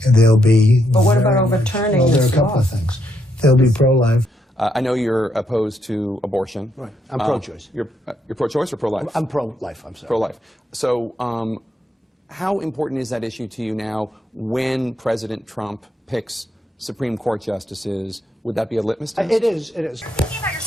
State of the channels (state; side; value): normal; both; correlation 0.77